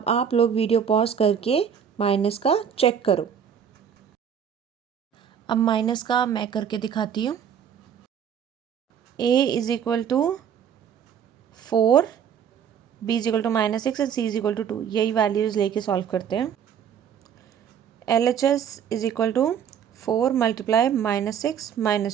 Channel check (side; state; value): left; quieter; 8.2 dB